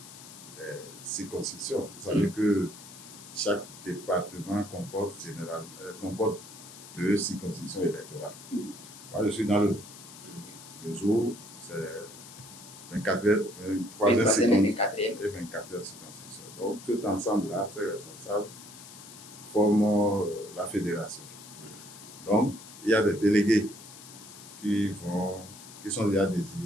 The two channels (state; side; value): noise; left; hiss, 16 dB below the sound